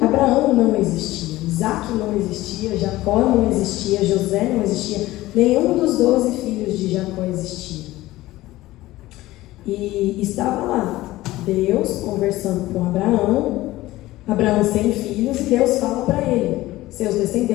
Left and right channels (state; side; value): quieter; right; 17.2 dB